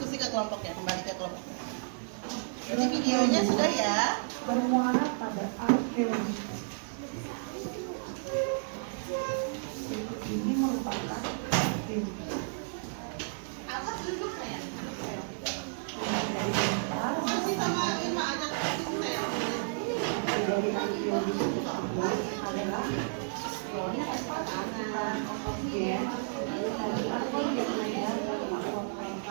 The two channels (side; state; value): left; silent; digital silence